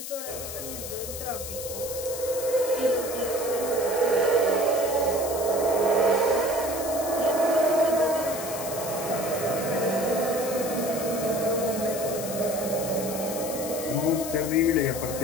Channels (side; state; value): left; noise; hiss, 8 dB below the sound